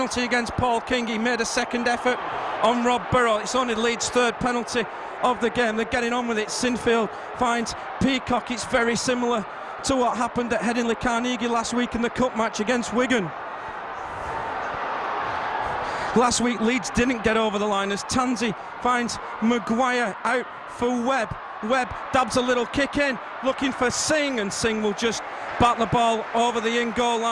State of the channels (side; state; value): both; identical; correlation 1.00